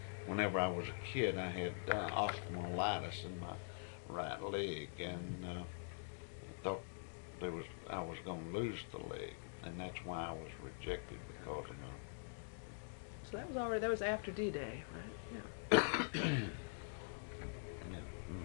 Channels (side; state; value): right; silent; digital silence